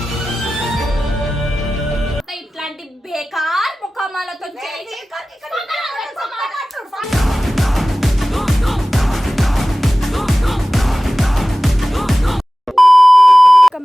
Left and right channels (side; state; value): both; normal; correlation 0.96